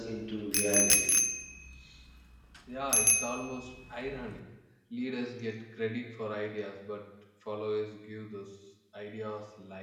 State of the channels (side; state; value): both; identical; correlation 1.00